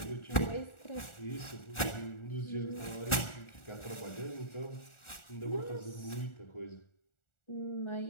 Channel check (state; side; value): late; right; 1.4 ms